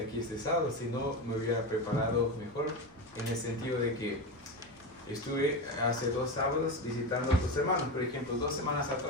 aquí este sábado, sino me hubiera preparado mejor, en el sentido de que estuve hace 2 sábados visitando a otros hermanos. Por ejemplo, 2 semanas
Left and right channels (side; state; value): right; noise; rumble, 28 dB below the sound